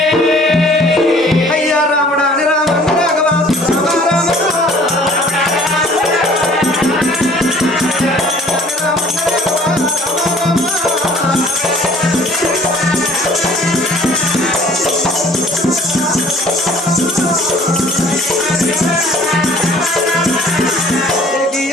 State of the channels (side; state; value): both; normal; correlation 0.53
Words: అయ్యా రాముడా అని రామ రాఘవ రామ రామ